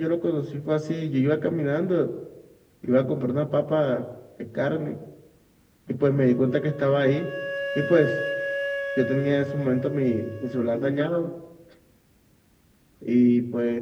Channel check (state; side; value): identical; both; correlation 1.00